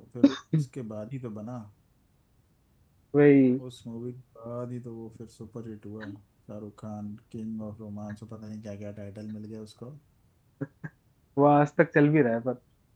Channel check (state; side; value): identical; both; correlation 1.00